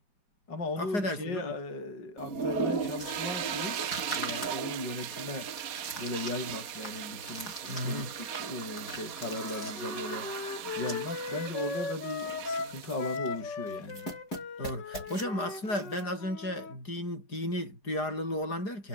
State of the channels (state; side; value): late; right; 4.7 ms